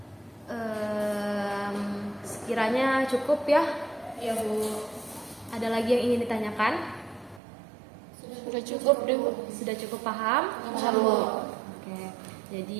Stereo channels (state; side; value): drops out; left; at 7.4 s